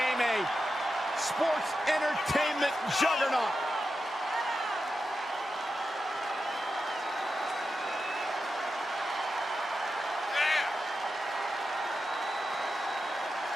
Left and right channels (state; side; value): normal; both; correlation 0.89